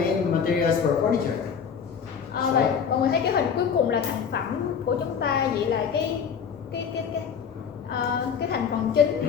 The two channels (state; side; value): quieter; right; 7.0 dB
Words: materials for furniture? Vậy mọi người thấy cái hình cuối cùng là thành phẩm của chúng ta, vậy là cái thành phần